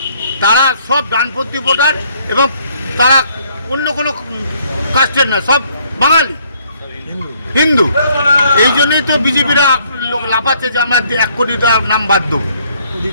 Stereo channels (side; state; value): both; inverted; correlation -0.65